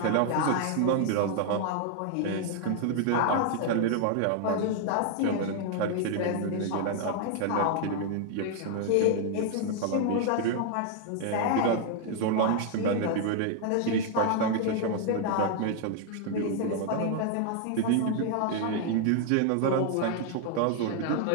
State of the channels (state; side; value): different; both; correlation 0.00